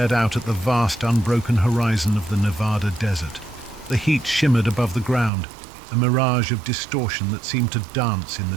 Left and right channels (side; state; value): left; drops out; at 5.3 s